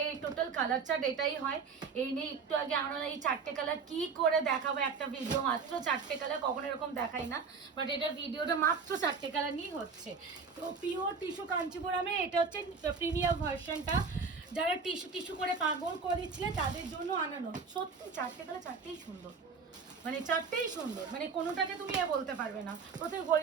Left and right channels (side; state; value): left; quieter; 5.2 dB